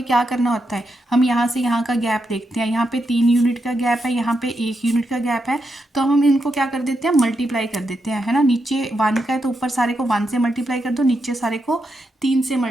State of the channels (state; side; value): normal; both; correlation 0.84